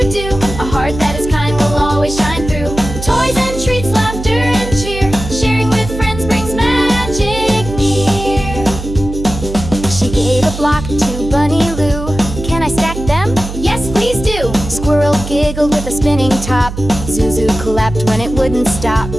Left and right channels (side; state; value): right; noise; hum, 8 dB below the sound